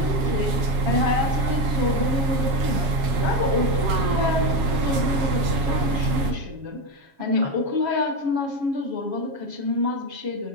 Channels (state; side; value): late; left; 7.3 ms